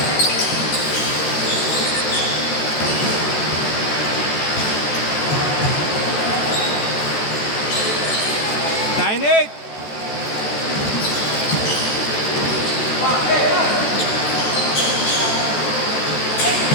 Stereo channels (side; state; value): right; late; 14 ms